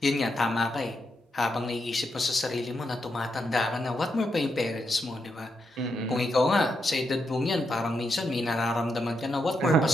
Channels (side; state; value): both; normal; correlation 0.82